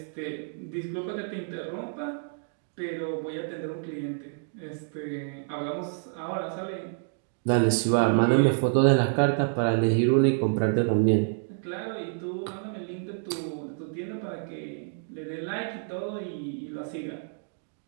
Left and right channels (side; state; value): left; silent; digital silence